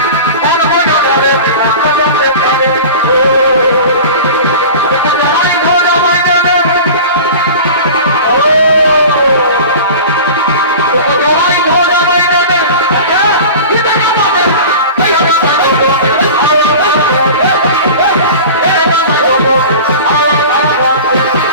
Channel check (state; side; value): inverted; both; correlation -0.35